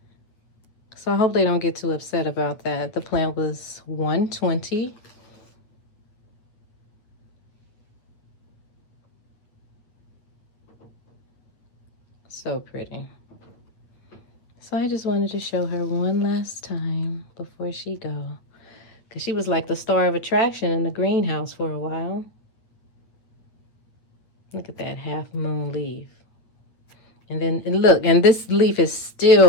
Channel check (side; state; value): right; late; 9.2 ms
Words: So I hope they don't get too upset about that. The plant was $120. So pretty. So I just wanted to show her one last time before she go. Because she was like the star of attraction in the greenhouse for a while. Look at that half moon leaf. And then, and look, and this leaf is